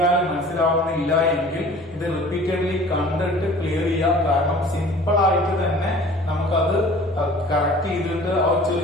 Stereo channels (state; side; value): normal; both; correlation 0.47